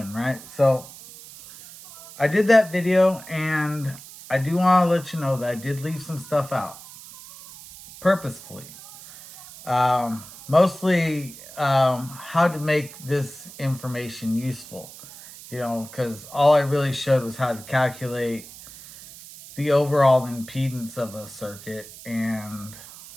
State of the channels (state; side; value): noise; right; hiss, 17 dB below the sound